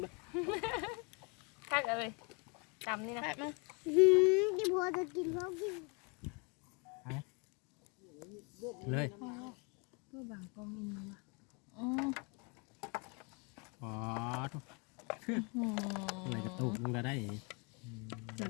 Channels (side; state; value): right; quieter; 32.7 dB